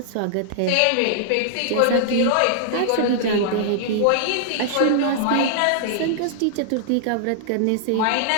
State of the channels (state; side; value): different; both; correlation -0.01